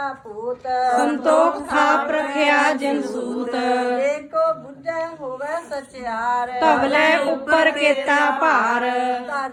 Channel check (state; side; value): identical; both; correlation 1.00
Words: ਪੂਤ ਸੰਤੋਖ ਥਾਪ ਰਖਿਆ ਜਿਨ ਸੂਤ ਏਕੋ ਬੁੱਝੈ ਹੋਵੇ ਸਚਿਆਰ ਧਵਲੇ ਉੱਪਰ ਕੀਤਾ ਭਾਰ